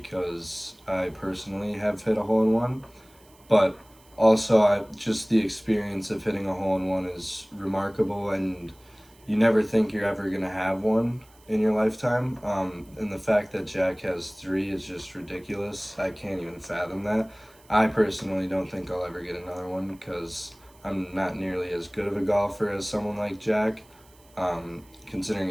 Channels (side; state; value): right; noise; hiss, 28 dB below the sound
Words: I personally have hit a hole in one. But also, just the experience of hitting a hole in one is remarkable, and you never think you're ever gonna have one in your lifetime. And the fact that Jack has three is just ridiculous. I can't even fathom that. I personally don't think I'll ever get another one because I'm not nearly as good of a golfer as someone like Jack. Considering